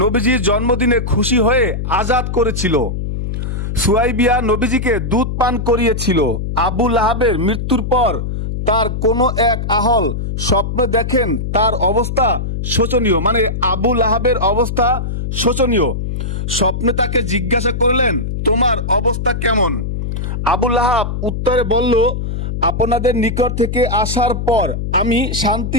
জন্মদিনে খুশি হয়ে আজাদ করেছিল। সুয়াইবিয়া নবীজিকে দুধ পান করিয়েছিল। আবু লাহাবের মৃত্যুর পর তার কোনো এক আহল স্বপ্নে দেখেন তার অবস্থা শোচনীয়, মানে আবু লাহাবের অবস্থা শোচনীয়। স্বপ্নে তাকে জিজ্ঞাসা করলেন, তোমার অবস্থা কেমন? আবু লাহাব উত্তরে বলল, আপনাদের নিকট থেকে আসার পর আমি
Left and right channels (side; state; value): left; noise; hum, 3 dB below the sound